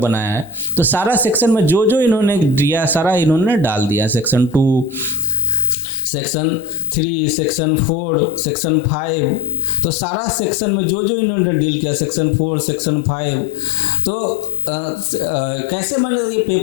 है, तो सारा सेक्शन में जो जो इन्होंने दिया सारा इन्होंने डाल दिया। सेक्शन 2, सेक्शन 3, सेक्शन 4, सेक्शन 5, तो सारा सेक्शन में जो जो इन्होंने डील किया, सेक्शन 4, सेक्शन 5, तो कैसे मैंने ये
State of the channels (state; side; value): drops out; right; at 5.7 s